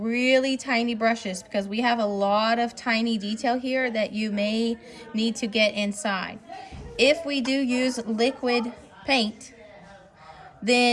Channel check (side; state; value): both; identical; correlation 1.00